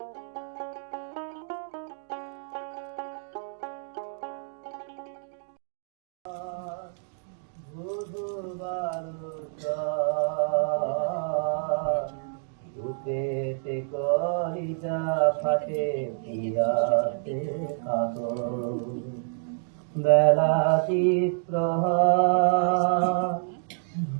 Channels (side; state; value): left; silent; digital silence